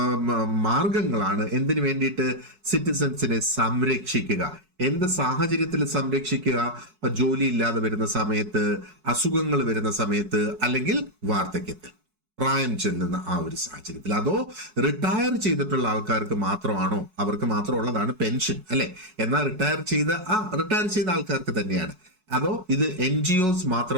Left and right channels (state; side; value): late; left; 4.6 ms